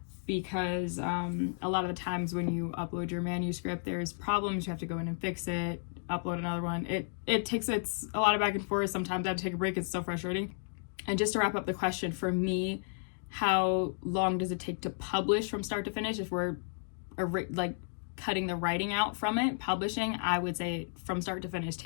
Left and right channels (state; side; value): silent; right; digital silence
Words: Because a lot of the times when you upload your manuscript, there's problems, you have to go in and fix it, upload another one. It's a lot of back and forth. Sometimes I have to take a break. It's so frustrating. And just to wrap up the question, for me, how long does it take to publish from start to finish? If we're like cutting the writing out from it, publishing, I would say from start to finish